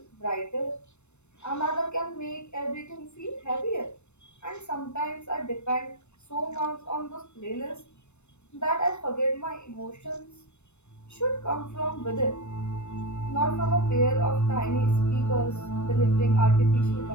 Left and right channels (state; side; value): late; right; 0.82 ms